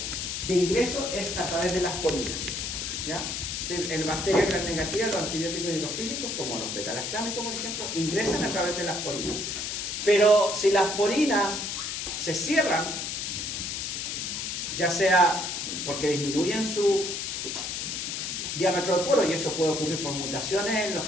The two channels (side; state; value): left; noise; hiss, 3 dB below the sound